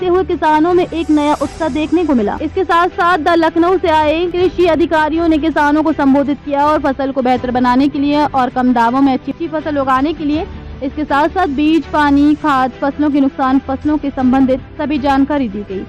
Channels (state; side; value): identical; both; correlation 1.00